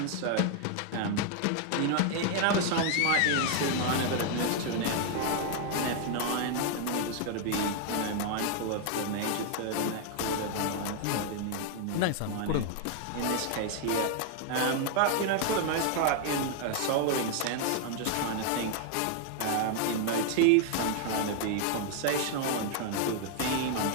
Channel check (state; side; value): different; both; correlation 0.00